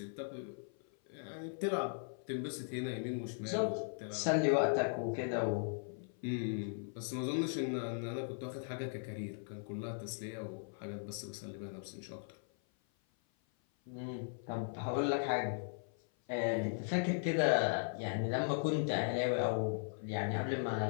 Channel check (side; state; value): right; silent; 52 dB below the other